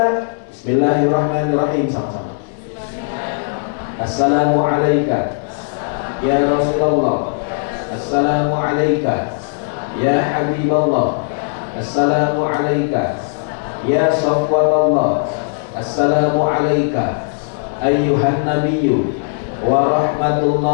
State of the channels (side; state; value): right; silent; digital silence